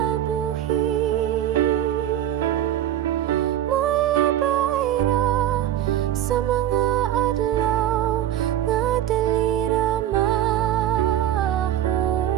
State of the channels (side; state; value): left; quieter; 11.6 dB